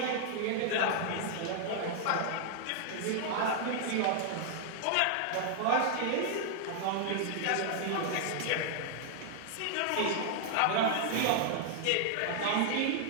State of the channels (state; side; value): different; both; correlation -0.01